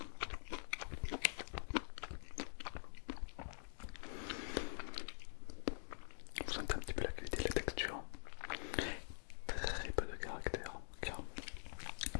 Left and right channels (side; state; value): right; silent; digital silence